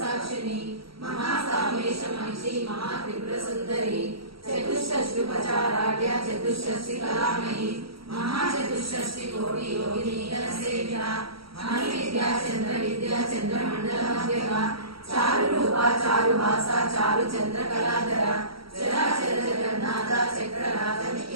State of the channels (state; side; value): late; left; 0.75 ms